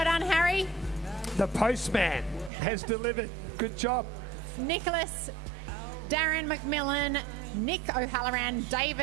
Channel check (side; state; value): left; drops out; at 2.5 s